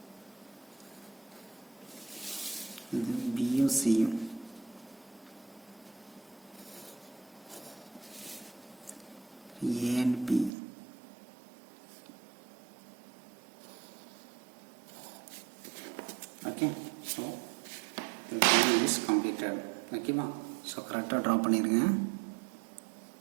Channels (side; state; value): left; drops out; at 10.5 s